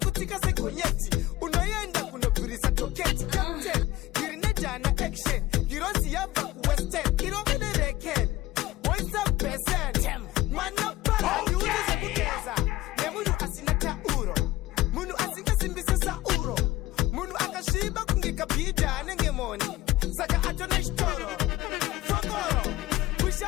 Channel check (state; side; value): quieter; right; 16.6 dB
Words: segonyeti unoyenda kunobvurisa toketi captain girine jana action girozi yabva kuwestern irongene reken what's up percent mwana para yuzi zekugeza nemunhu asina tauro munhu asingasimbise sauro munhu akasviba kunge kabhidha anenge moni saka atone chitoro fokoro